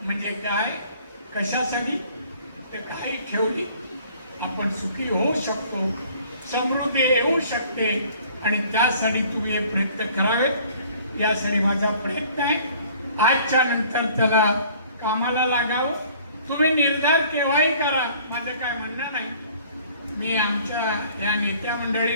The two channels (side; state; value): both; inverted; correlation -0.54